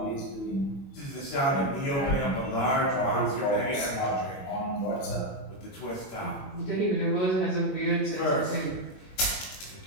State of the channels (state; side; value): late; right; 21 ms